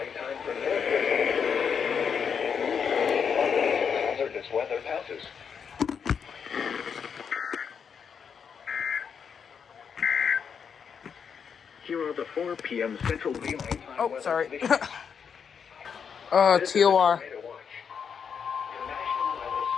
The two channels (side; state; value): right; quieter; 6.8 dB